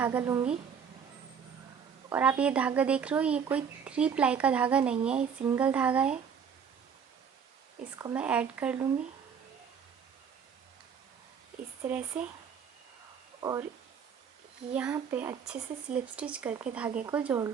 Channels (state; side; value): quieter; left; 7.1 dB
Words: लूँगी, और आप ये धागा देख रहे हो, ये कोई 3 प्लाई का धागा नहीं है, ये सिंगल धागा है। इसको मैं ऐड कर लूँगी इस तरह से, और यहाँ पे अच्छे से स्लिप स्टिच करके धागे को जोड़